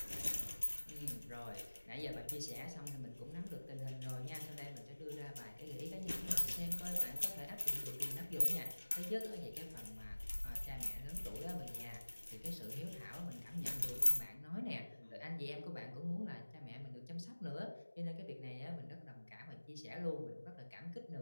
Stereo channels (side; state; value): both; inverted; correlation -1.00